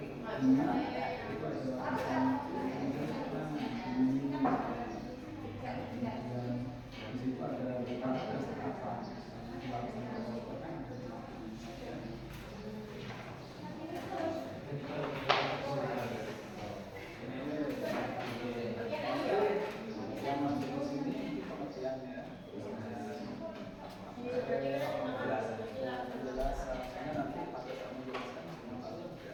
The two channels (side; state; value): both; identical; correlation 1.00